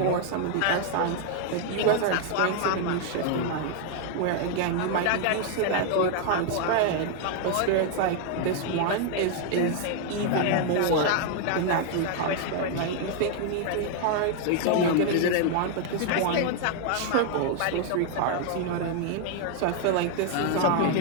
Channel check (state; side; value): different; both; correlation 0.00